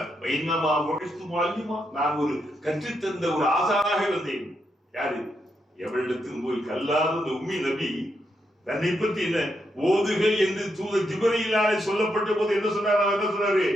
நான் ஒரு கற்றுத்தந்த ஒரு ஆசானாக வந்தேன். யாரு? எவரிடத்தில் போய் கல்லாத உம்மி நபி தன்னை பற்றி என்ன ஓதுகள் என்று தூதர் ஜிப்ரீலாலே சொல்லப்பட்ட போது என்ன சொன்னார்? அவர் என்ன சொன்னாரு?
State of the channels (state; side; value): normal; both; correlation 0.81